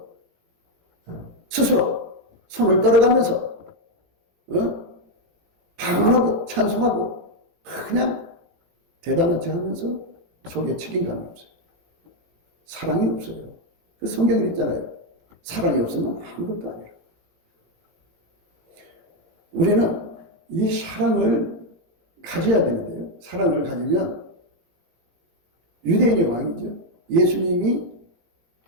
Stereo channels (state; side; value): late; left; 17 ms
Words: 스스로 손을 떨어가면서 방언하고 찬송하고 그냥 대단한 척 하면서 속에 책임감이 없어요. 사랑이 없어요. 그 성경에 있잖아요. 사랑이 없으면 아무것도 아니라. 우리는 이 사랑을 가져야 되는데요. 사랑을 가지면 유대인의 왕이죠. 예수님이